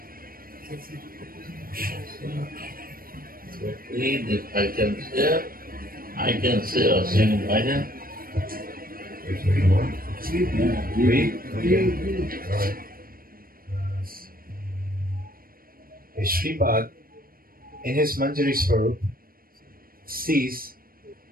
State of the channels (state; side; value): late; left; 0.42 ms